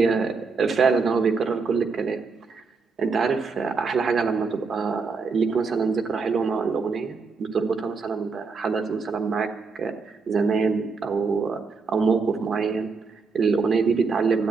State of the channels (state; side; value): quieter; left; 4.7 dB